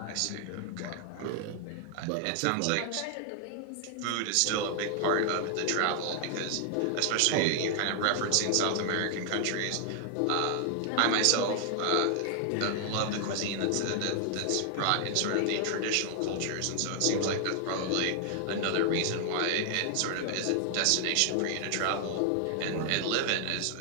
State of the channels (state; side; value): different; both; correlation 0.00